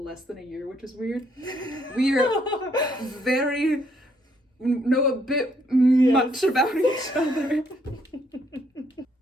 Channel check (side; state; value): both; normal; correlation 0.70